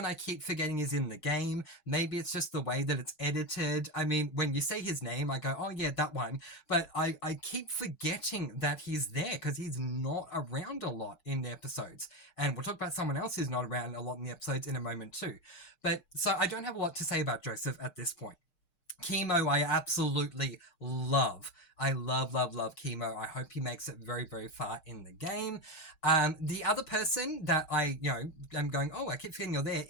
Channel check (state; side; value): late; right; 6.5 ms